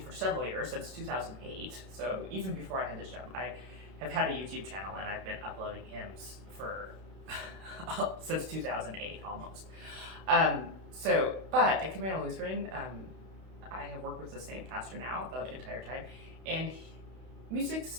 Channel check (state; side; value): late; left; 31 ms